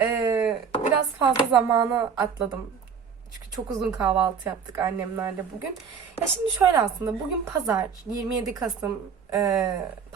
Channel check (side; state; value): left; quieter; 6.5 dB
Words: Biraz fazla zamanı atladım. Çünkü çok uzun kahvaltı yaptık annemlerle bugün. Ya şimdi şöyle, aslında bugün pazar, 27 Kasım